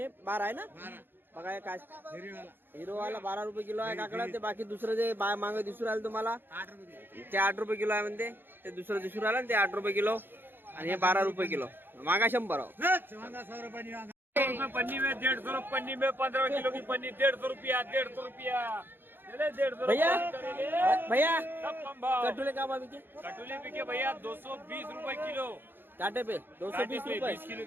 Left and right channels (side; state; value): left; late; 0.099 ms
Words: 12 आहे ना। बघा हे काय हिरवीवाला हिरोवाला 12 रुपये किलो आहे काकडा। ते बाकी दुसरं जे मागं दिसून राहिलं तुम्हाला 8 रुपये किलो, ते 8 रुपये किलो आहे म्हणते। ते दुसरं दिसून राहिलं ते 8 रुपये किलो आणि हे 12 रुपये किलो। मागा 100 वांगा 100 रुपये पन्नी में 150, पन्नी में 15 किलो की पन्नी 150 रुपया, 150 रुपया। चले 150 भैया सब कम भाव। कटुले का भाव बिके? कटोले बिके भैया 220 रुपये किलो। काटे पे 220 काटे पे रुपये, 20 किलो